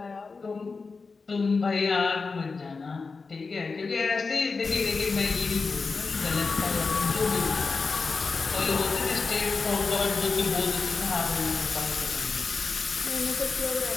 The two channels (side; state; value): right; quieter; 4.4 dB